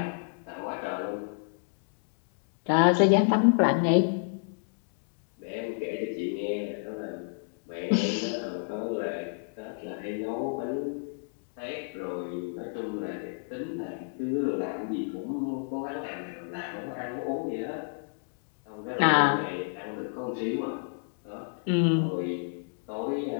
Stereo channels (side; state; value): right; silent; digital silence